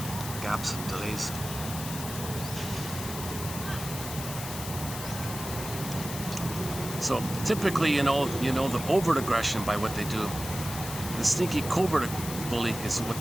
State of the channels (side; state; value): left; noise; hiss, 8 dB below the sound